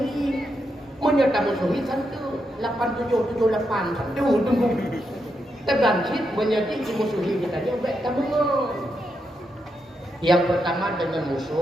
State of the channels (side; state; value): both; normal; correlation 0.83